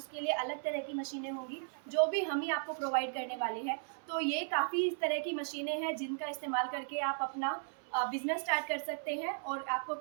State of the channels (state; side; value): silent; left; 54 dB below the other